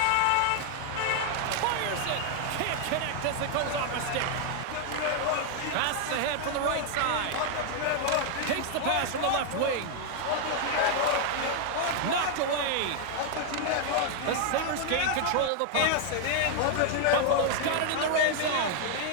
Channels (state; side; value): different; both; correlation 0.00